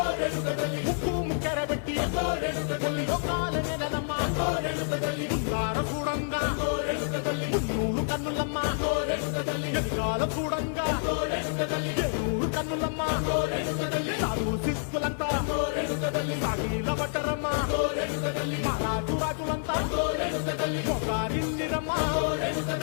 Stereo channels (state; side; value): silent; right; digital silence